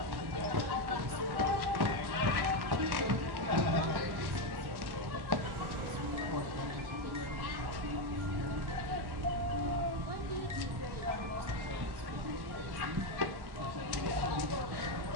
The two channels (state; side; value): late; left; 1.1 ms